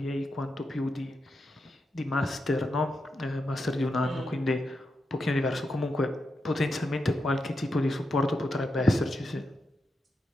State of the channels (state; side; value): normal; both; correlation 0.86